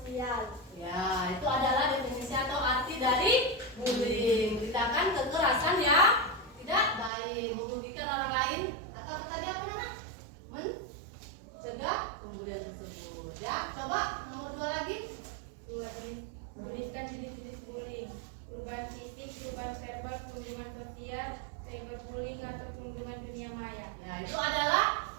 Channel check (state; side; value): drops out; left; at 7.1 s